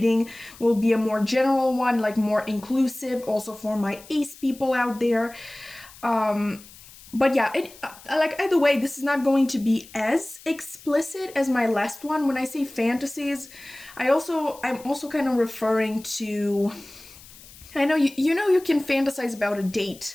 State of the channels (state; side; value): noise; left; hiss, 21 dB below the sound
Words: will be a more general one, like more inclusive, also for my ace people out there. But yeah, like either way, this is not going to be as explicit as my last one. When I say fantasies, I'm also kind of referring to, I know you can fantasize about a